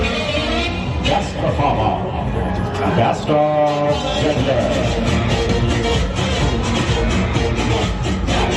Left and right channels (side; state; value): both; identical; correlation 1.00